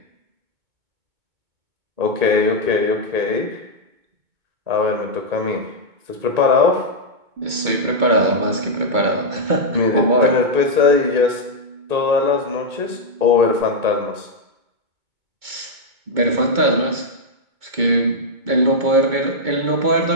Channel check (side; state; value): left; late; 2.2 ms